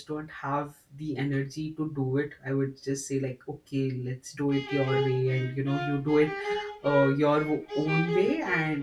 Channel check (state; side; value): identical; both; correlation 1.00